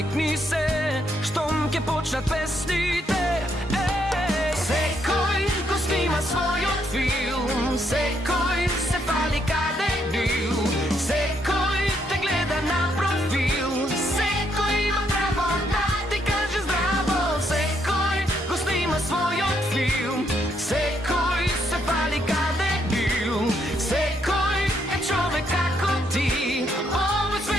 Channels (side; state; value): both; normal; correlation 0.74